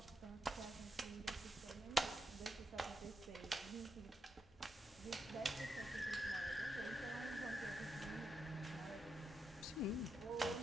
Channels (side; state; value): both; normal; correlation 0.84